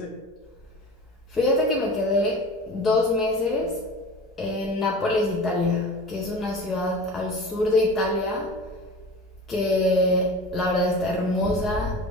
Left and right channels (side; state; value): both; normal; correlation 0.35